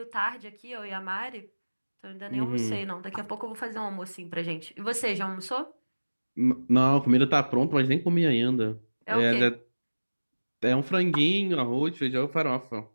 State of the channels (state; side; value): inverted; both; correlation -1.00